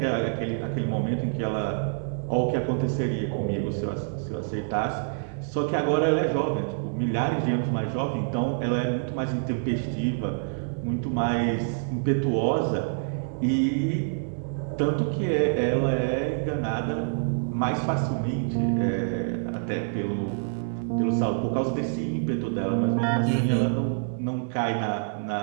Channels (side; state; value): left; silent; digital silence